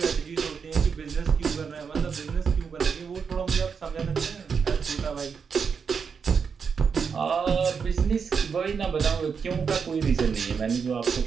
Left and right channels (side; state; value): left; quieter; 6.1 dB